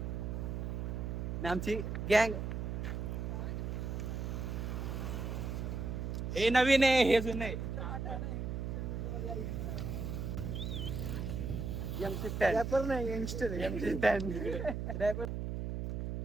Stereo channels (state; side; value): noise; right; hum, 3 dB below the sound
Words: आमची गँग हे नवीन आहे, हे जुनं आहे. रॅपर नाही, यंगस्टर रॅपर.